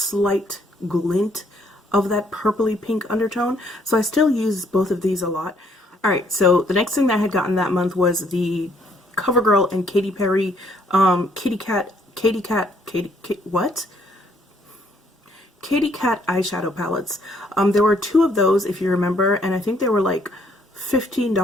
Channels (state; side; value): normal; both; correlation 0.67